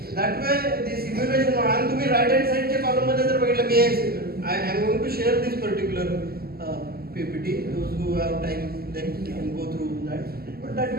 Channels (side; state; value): left; late; 0.45 ms